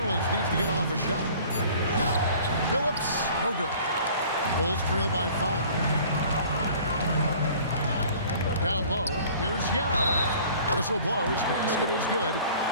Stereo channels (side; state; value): both; inverted; correlation -0.49